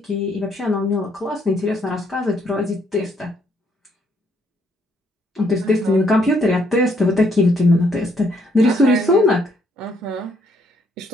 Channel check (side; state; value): both; normal; correlation 0.70